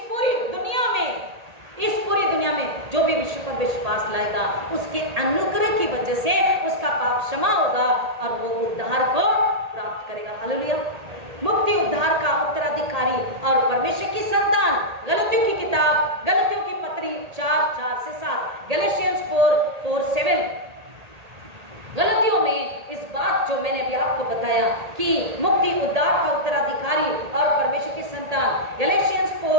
पूरी दुनिया में जो भी विश्व पर विश्वास लाएगा, उसके अनुग्रह की वजह से उसका पाप क्षमा होगा और वो उद्धार को प्राप्त करेगा। हालेलुया। मुक्ति उद्धार का उत्तराधिकारी और परमेश्वर की संतान। गलतियों की किताब, गलतियों की पत्री 4:4-7, गैलेशियंस 4:4-7। गलतियों में इस बात जो मैंने अभी आपको बताया कि मुक्ति उद्धार का उत्तराधिकारी और परमेश्वर की संतान, गैलेशियंस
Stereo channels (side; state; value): left; late; 1.8 ms